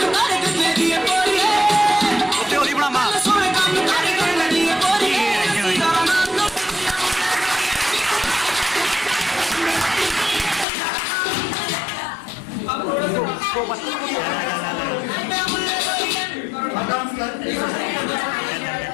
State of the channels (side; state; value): right; drops out; at 10.7 s